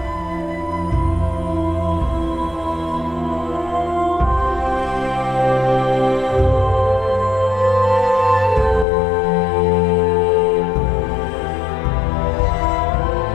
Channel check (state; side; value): drops out; right; at 8.8 s